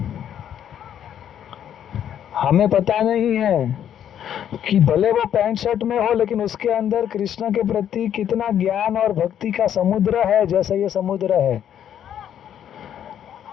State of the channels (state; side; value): quieter; right; 9.8 dB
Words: हमें पता नहीं है कि भले वो पैंट शर्ट में हो, लेकिन उसके अंदर कृष्ण के प्रति कितना ज्ञान और भक्ति का समुद्र है, जैसे ये समुद्र है।